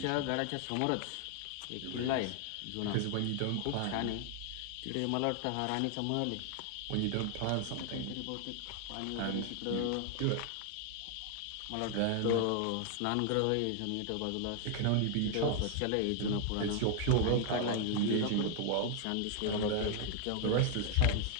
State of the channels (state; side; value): different; both; correlation 0.00